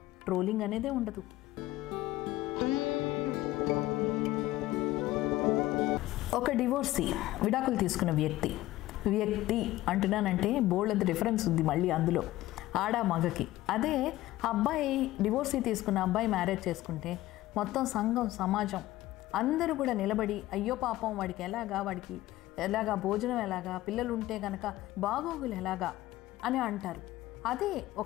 ట్రోలింగ్ అనేదే ఉండదు. ఒక డివోర్సీ, విడాకులు తీసుకున్న వ్యక్తి అంటున్నానంటే బోల్డ్ డిఫరెన్స్ ఉంది మళ్ళీ అందులో, ఆడ మగకి. అదే అబ్బాయి డివోర్సీ తీసుకున్న అబ్బాయి మ్యారేజ్ చేసుకుంటే మొత్తం సంఘం, సమాజం అందరూ కూడా నిలబడి అయ్యో పాపం వాడికి ఎలాగా భోజనం ఎలాగా, పిల్లలు ఉంటే కనుక బాగోగులు ఎలాగా అని అంటారు. అదే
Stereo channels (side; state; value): right; quieter; 16.4 dB